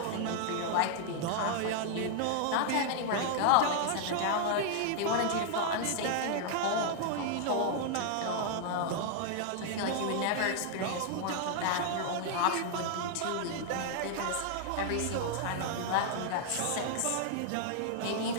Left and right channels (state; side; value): different; both; correlation -0.01